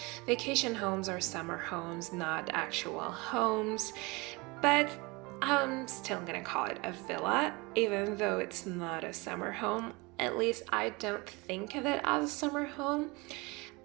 vacation homes or summer homes, not actual homes, but I'm still gonna call it a villa, even though it's not a summer home. At least I don't think of it as a summer home.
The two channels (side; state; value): left; quieter; 25.5 dB